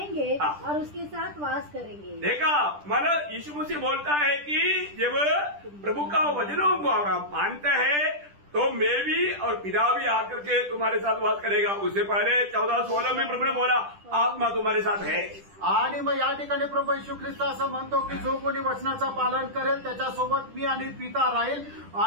और उसके साथ वास करेंगे। देखा, मतलब यीशु मसीह बोलता है कि जब प्रभु का वचनों को आप मानते हैं तो मैं भी और पिता भी आकर के तुम्हारे साथ वास करेगा। उससे पहले 14:16 में प्रभु ने बोला आत्मा तुम्हारे साथ है। आणि मग या ठिकाणी प्रभू येशू ख्रिस्त असं म्हणतो की जो कोणी वचनाचं पालन करेल त्याच्यासोबत मी आणि पिता राहील।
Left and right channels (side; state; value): left; late; 10 ms